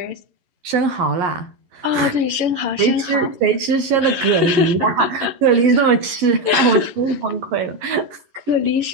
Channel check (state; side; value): late; left; 11 ms